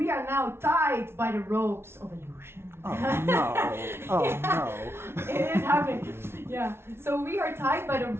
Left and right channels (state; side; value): late; left; 0.12 ms